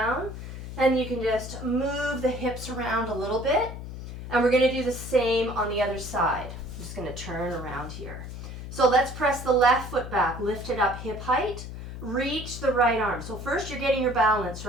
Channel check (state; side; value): noise; left; hum, 9 dB below the sound